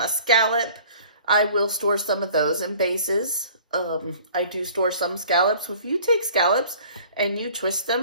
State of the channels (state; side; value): inverted; both; correlation -0.50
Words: scallop, I will store some of those in bases. I do store some scallops. If you take scallops and you twist